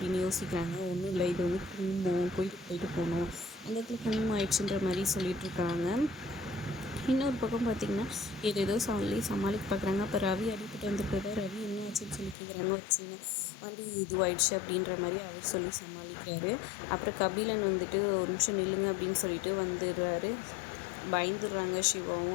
யோசிக்கிறாங்க. ஒன்றும் இல்லை, இது வந்து குங்குமம் கோயிலுக்கு போயிட்டு போகணும், அந்த இடத்துல குங்குமம் ஆயிடுச்சுன்ற மாதிரி சொல்லிட்டுருக்காங்க. இன்னொரு பக்கம் பார்த்திங்கன்னா ஏதோ சமாளிக்க பார்க்குறாங்க. அப்போ ரவி அடிப்பட்டு வந்துருக்கிறத ரவி என்ன ஆச்சுன்னு சொல்லி கேட்குறாங்க. வச்சுங்க வண்டி இதுவாயிடுச்சு அப்படின்ற மாதிரி அவர் சொல்லி சமாளிக்கிறாரு. அப்புறம் கபிலன் வந்துட்டு ஒரு நிமிஷம் நில்லுங்க அப்படின்னு சொல்லிட்டு வந்துடுறாரு. பயந்துடுறாங்க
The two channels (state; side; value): drops out; right; at 12.4 s